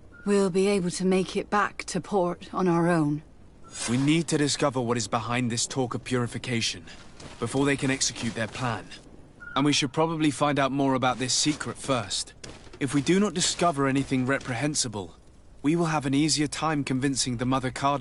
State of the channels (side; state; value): both; identical; correlation 1.00